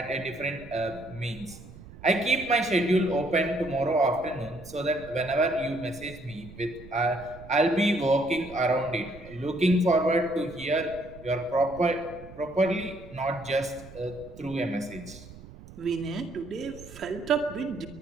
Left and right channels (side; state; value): right; noise; rumble, 18 dB below the sound